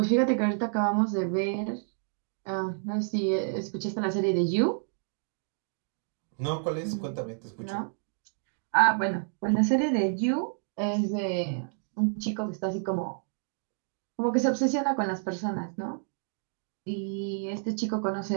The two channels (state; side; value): silent; left; digital silence